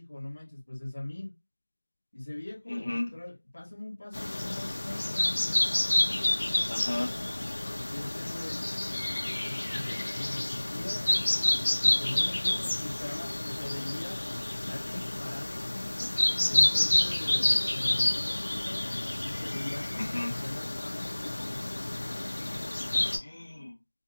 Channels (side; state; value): both; inverted; correlation -1.00